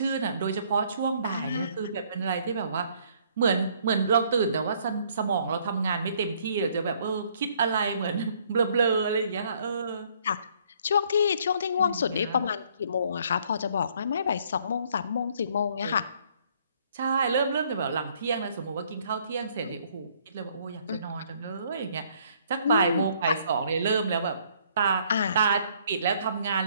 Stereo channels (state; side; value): inverted; both; correlation -0.63